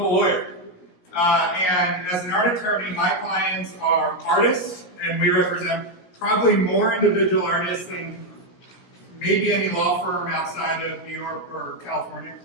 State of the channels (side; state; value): right; late; 17 ms